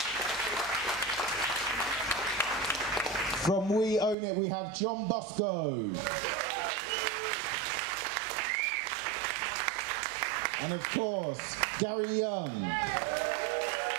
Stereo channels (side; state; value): left; drops out; at 4.2 s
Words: From We Own It, we have John Bosco. And of course, Gary Young.